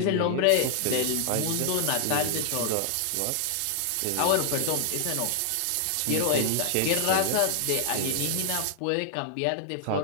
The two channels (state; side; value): different; both; correlation 0.00